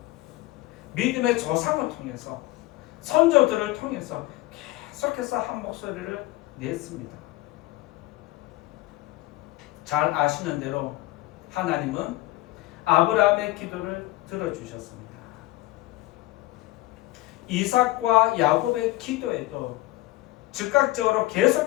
믿음의 조상을 통해서 선조들을 통해서 계속해서 한 목소리를 냈습니다. 잘 아시는 대로 하나님은 아브라함의 기도를 들어주셨습니다. 이삭과 야곱의 기도에도 즉각적으로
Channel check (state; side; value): quieter; right; 18.5 dB